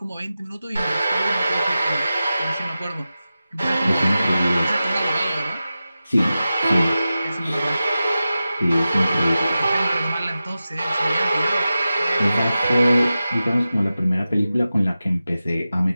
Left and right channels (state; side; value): inverted; both; correlation -0.94